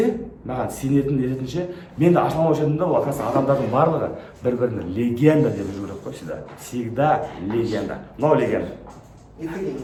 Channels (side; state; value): both; identical; correlation 1.00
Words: маған сенетін ететінше, мен де ашыламаушы едім да, ол оказывается адамдардың барлығы бір-біріне легенда деп жүру керек қой всегда. Всегда легенда. Но легенда. Екі деген.